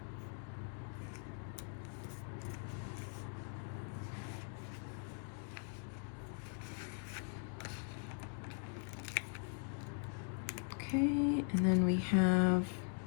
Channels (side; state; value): right; silent; 50 dB below the other